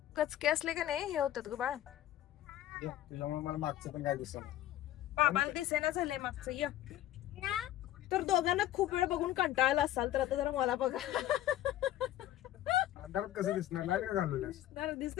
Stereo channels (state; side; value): quieter; right; 13.4 dB